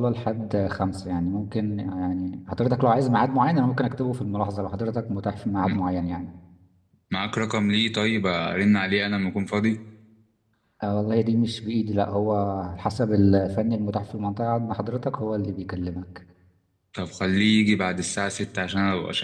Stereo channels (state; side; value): identical; both; correlation 1.00